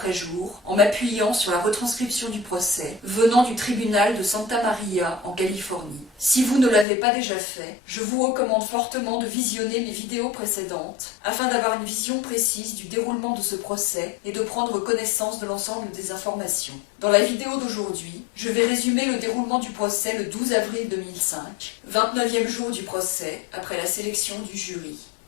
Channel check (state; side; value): drops out; right; at 6.9 s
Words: jour en m'appuyant sur la retranscription du procès venant du tribunal de Santa Maria en Californie. Si vous ne l'avez pas déjà fait, je vous recommande fortement de visionner mes vidéos précédentes afin d'avoir une vision précise du déroulement de ce procès et de prendre connaissance de l'ensemble des informations. Dans la vidéo d'aujourd'hui, je vais résumer le déroulement du procès le 12 avril 2005, 29e jour du procès après la sélection du jury.